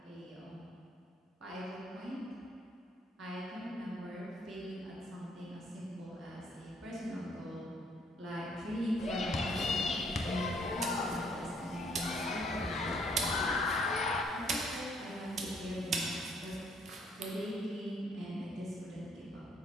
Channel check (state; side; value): normal; both; correlation 0.66